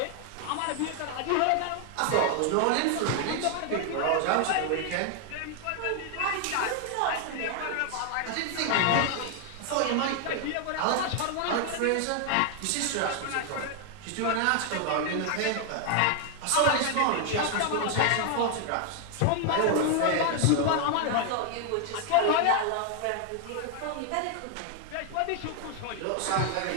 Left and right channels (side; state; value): both; different; correlation 0.00